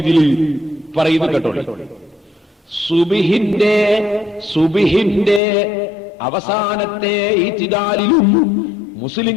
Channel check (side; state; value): right; drops out; at 5.4 s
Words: പറയുന്നു കേട്ടോളി. സുബ്ഹിന്റെ അവസാനത്തെ ഇത്തിദാലിലും